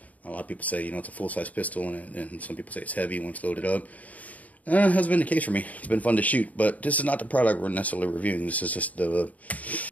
A lot of people say, it's a full-size pistol, and some people say it's heavy when it's loaded up. Hasn't been the case for me. It's been fun to shoot, but this is not the product we're necessarily reviewing. This is just this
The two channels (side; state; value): right; late; 0.072 ms